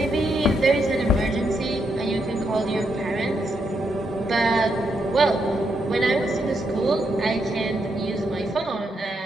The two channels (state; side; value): normal; both; correlation 0.80